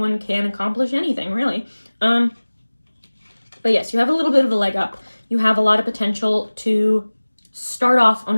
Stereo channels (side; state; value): both; inverted; correlation -1.00